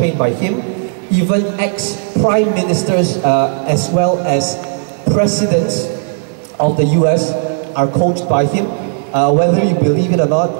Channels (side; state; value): left; silent; digital silence